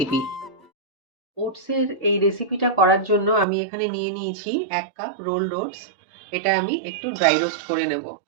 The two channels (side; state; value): left; drops out; at 3.5 s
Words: ওটসের এই রেসিপিটা করার জন্য আমি এখানে নিয়ে নিয়েছি 1 কাপ রোলড ওটস। এটা আমি একটু ড্রাই রোস্ট করে নেব।